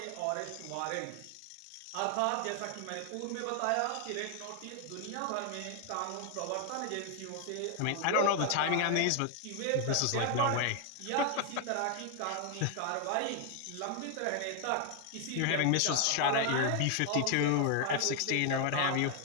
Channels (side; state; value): both; different; correlation 0.00